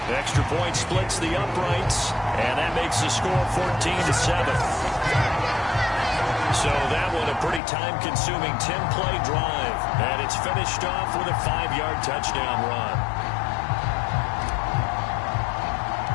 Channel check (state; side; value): drops out; right; at 7.6 s